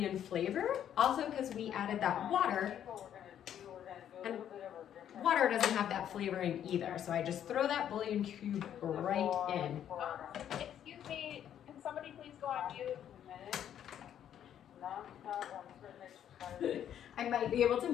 flavor, also because we added that water, and water doesn't have that flavoring either. So I just throw that bouillon cube right in. Excuse me, can somebody please go on mute? I might be able to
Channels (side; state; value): right; quieter; 10.0 dB